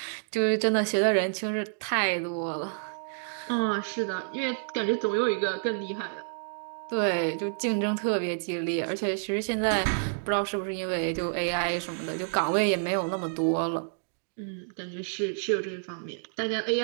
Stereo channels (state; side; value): silent; left; digital silence